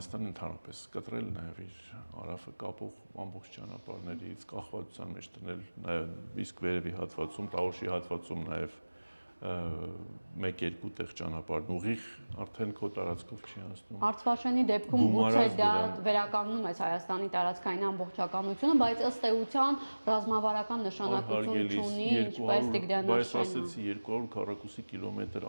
ընդհանրապես կտրել նաև իր հարավը կապող ամբողջ ճանապարհներից, կախվածության մեջ դնել նաև իսկ վերևի հատվածում, Տավուշի հատվածում նաև 1-2 տեղ ճանապարհն ուղիղ արդեն քո տարածքով չի անցնում։ Արցվաշենի դեպքում գուցե դա վերականգնում է Հայաստանի տարածքային ամբողջականությունը, բայց ըստ էության ռազմավարական նշանակություն չունի, ինչպես Տիգրանաշենը։ Բայց ասեցի 200 քառակուսի կիլոմետր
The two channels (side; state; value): both; inverted; correlation -1.00